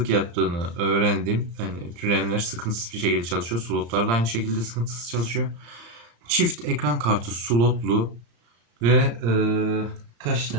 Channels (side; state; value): left; late; 35 ms